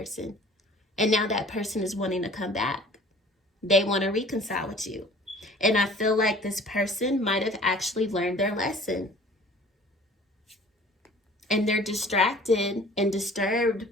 And now that person is wanting to come back. They want to reconcile with you. And I feel like this person might have actually learned their lesson. And they're distracted and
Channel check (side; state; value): both; normal; correlation 0.48